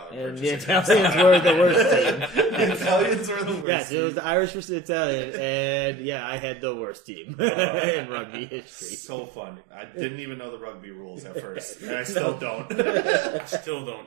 And the Italians were the worst team. The Italians were the worst. Yes, it was the Irish versus the Italian, and I had the worst team in rugby history. So fun. I didn't even know the rugby rules at first, and I still don't. I still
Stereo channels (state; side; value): drops out; left; at 3.7 s